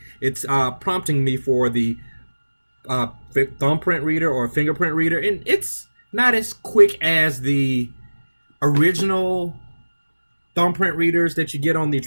it's prompting me for the thumbprint reader or fingerprint reader, and it's not as quick as the original thumbprint readers that you get on the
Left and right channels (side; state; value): both; inverted; correlation -1.00